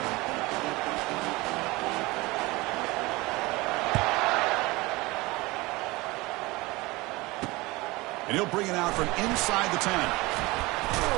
And he'll bring it out from inside the 10.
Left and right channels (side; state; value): left; quieter; 22.1 dB